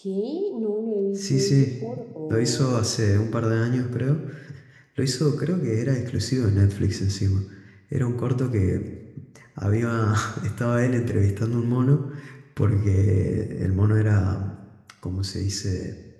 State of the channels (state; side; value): identical; both; correlation 1.00